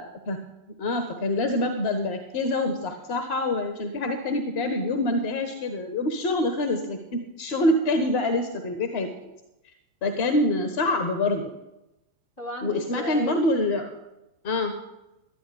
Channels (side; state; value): right; late; 3.0 ms